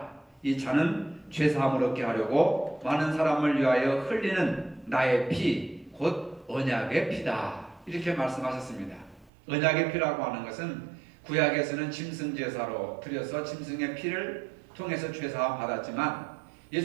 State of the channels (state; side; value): drops out; left; at 9.3 s